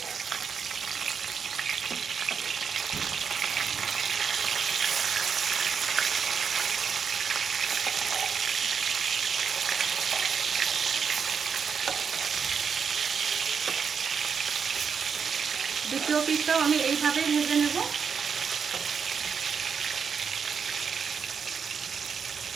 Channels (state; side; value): quieter; left; 6.4 dB